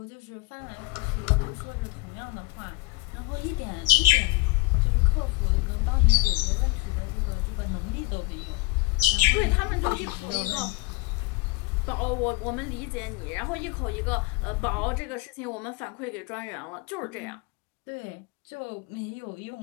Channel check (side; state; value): right; quieter; 22.2 dB